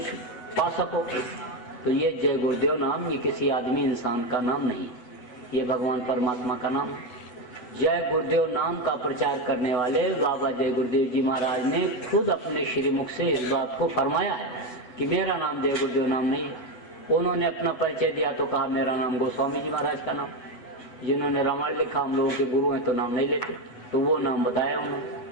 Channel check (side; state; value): right; late; 8.2 ms